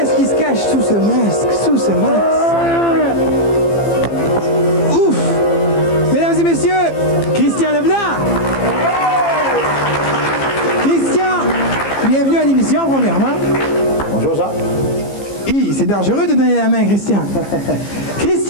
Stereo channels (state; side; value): late; right; 15 ms